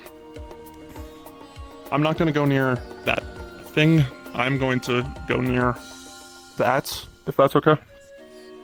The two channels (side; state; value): both; identical; correlation 1.00